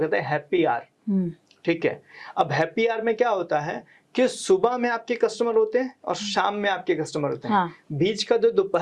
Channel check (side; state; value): both; identical; correlation 1.00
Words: हैं हैप्पी आवर। ठीक है, अब हैप्पी आवर में क्या होता है कि सुबह में आपके कस्टमर होते हैं और शाम में आपके कस्टमर होते हैं। हाँ। बीच का जो